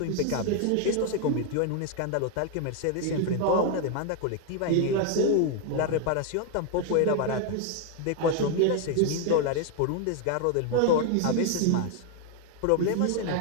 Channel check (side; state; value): both; different; correlation 0.01